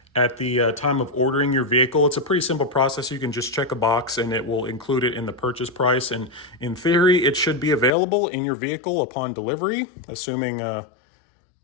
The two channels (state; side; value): drops out; right; at 7.9 s